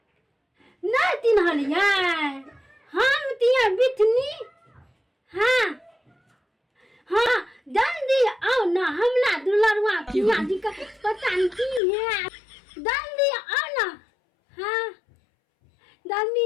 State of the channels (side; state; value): right; drops out; at 11.8 s